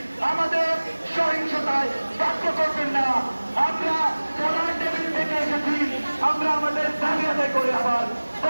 আমাদের সহিংসতায় বাধ্য করবেন না। আমরা পড়ার টেবিল থেকে এসেছি, আমরা আমাদের দাবি আদায় করে আবার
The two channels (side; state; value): both; inverted; correlation -1.00